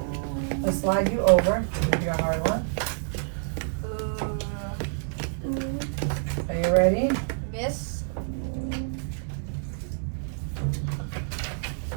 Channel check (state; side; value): silent; left; 58 dB below the other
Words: Let's slide you over. Give you a hard one. Are you ready? Miss.